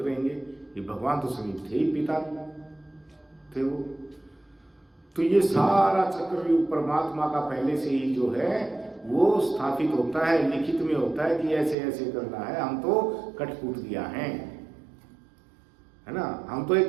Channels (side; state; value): left; drops out; at 11.8 s